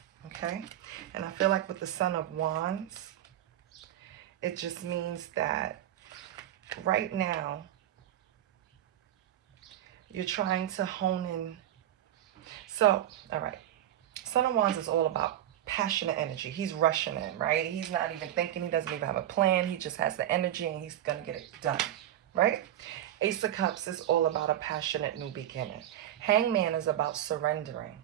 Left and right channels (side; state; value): left; quieter; 12.0 dB